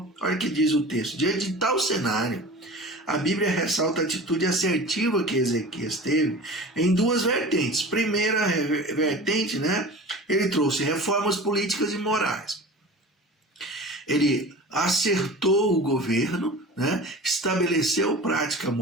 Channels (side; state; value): both; normal; correlation 0.37